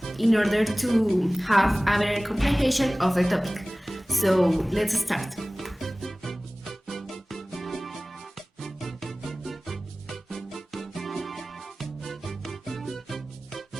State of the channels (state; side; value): normal; both; correlation 0.98